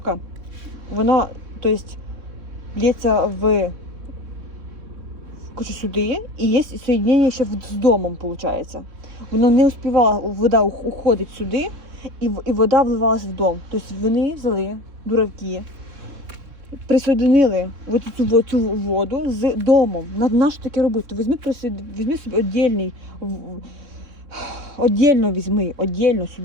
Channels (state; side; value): late; left; 3.6 ms